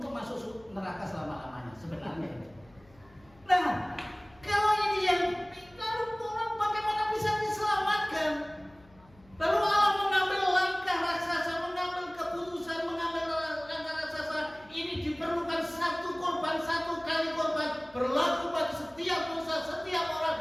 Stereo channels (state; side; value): noise; left; hum, 28 dB below the sound